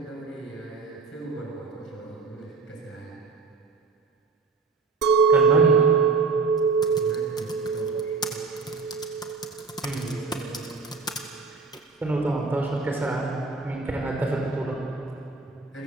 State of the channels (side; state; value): left; quieter; 4.6 dB